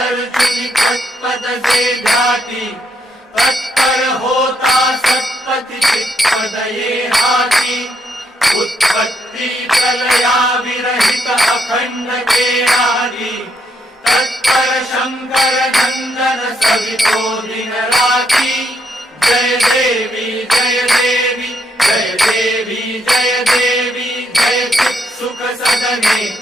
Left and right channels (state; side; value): normal; both; correlation 0.76